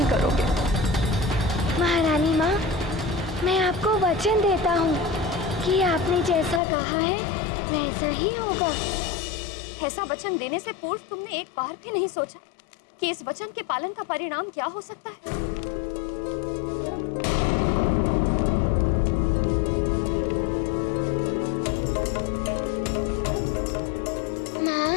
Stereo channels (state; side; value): drops out; right; at 6.6 s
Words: करोगे। महारानी माँ, मैं आपको वचन देता हूँ कि आपने जैसा कहा है वैसा ही होगा। ऐसा वचन देने से पूर्व तुमने एक बार भी नहीं सोचा कि इस वचन के पालन का परिणाम क्या हो सकता है? माँ,